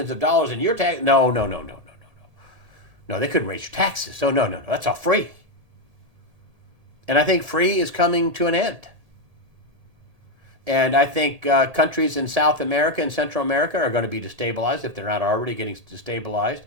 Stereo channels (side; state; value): left; late; 1.8 ms